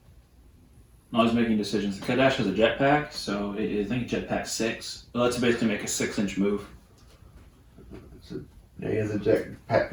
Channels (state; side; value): identical; both; correlation 1.00